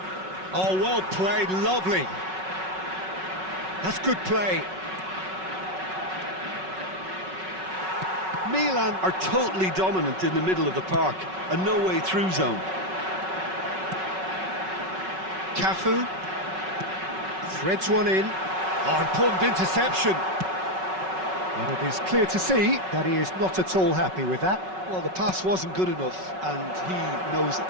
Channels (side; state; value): left; late; 5.4 ms